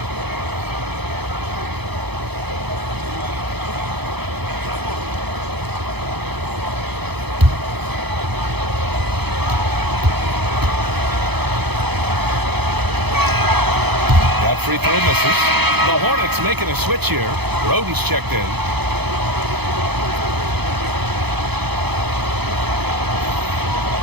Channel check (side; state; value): left; late; 0.98 ms